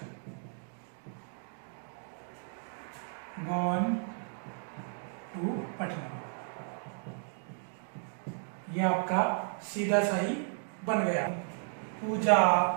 gone to Patna, ये आपका सीधा सही बन गया। पूजा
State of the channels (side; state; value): left; silent; 55 dB below the other